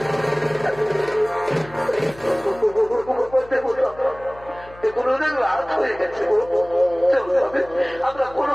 এখন অনেক রাত হয়ে গেছে, আমরা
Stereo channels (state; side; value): noise; left; hum, 21 dB below the sound